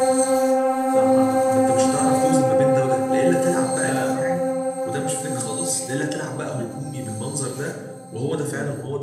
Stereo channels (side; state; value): both; identical; correlation 1.00